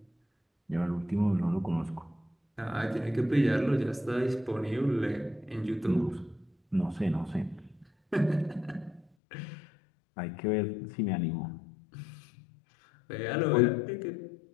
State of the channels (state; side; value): drops out; right; at 9.1 s